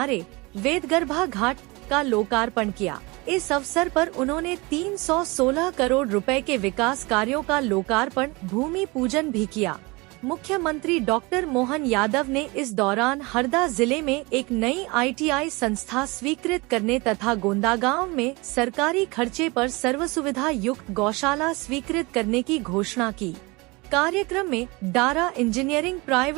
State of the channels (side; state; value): left; quieter; 25.2 dB